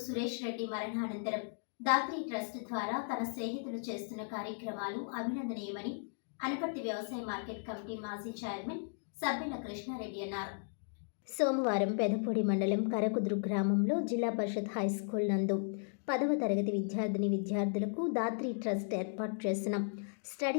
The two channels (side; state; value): right; silent; digital silence